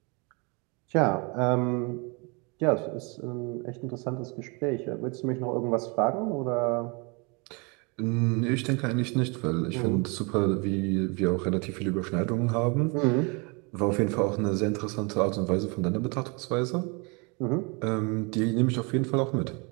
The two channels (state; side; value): quieter; left; 30.8 dB